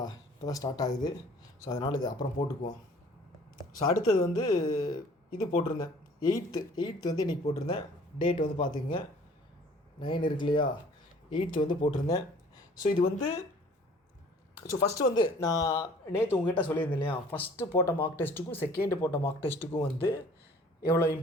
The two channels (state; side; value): normal; both; correlation 0.52